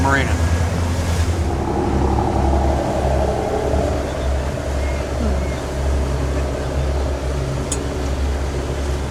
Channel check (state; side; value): identical; both; correlation 1.00